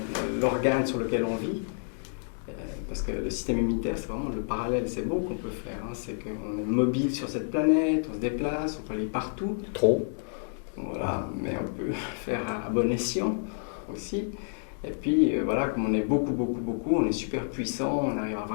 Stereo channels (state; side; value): silent; right; digital silence